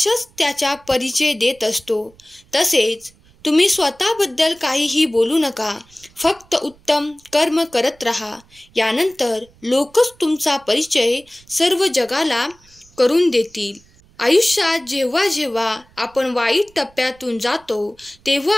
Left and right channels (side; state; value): right; noise; rumble, 29 dB below the sound